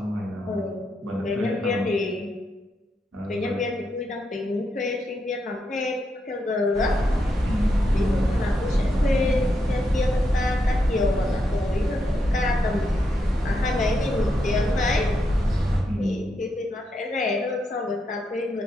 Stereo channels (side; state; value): both; normal; correlation 0.82